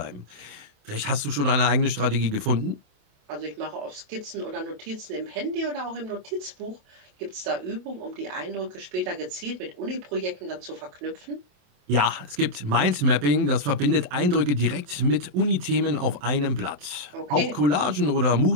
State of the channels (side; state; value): left; late; 28 ms